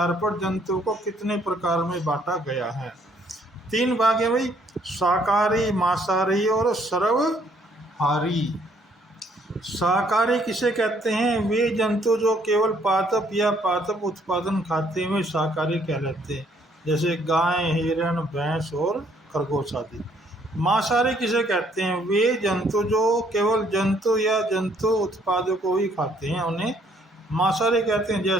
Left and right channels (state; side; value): normal; both; correlation 0.66